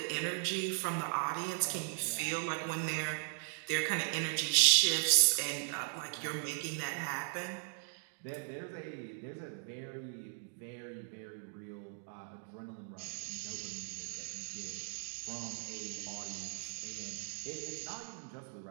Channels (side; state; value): left; silent; 53 dB below the other